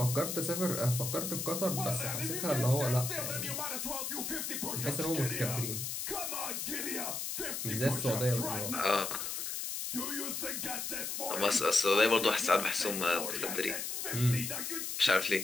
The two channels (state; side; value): noise; left; hiss, 3 dB below the sound